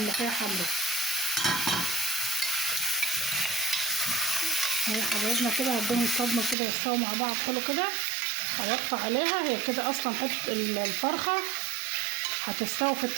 حمرا. اهي حبايبنا كده هديهم صدمه كده يستووا مع بعض حلو كده. هوطي عليها، هي كده اصلا حته الفرخه هتستوي في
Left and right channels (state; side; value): drops out; left; at 6.6 s